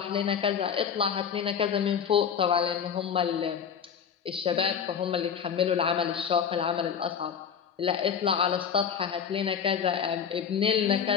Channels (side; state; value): right; quieter; 7.5 dB